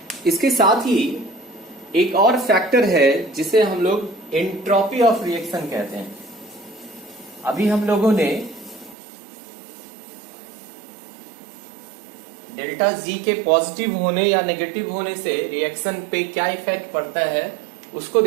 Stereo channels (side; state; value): left; drops out; at 9.0 s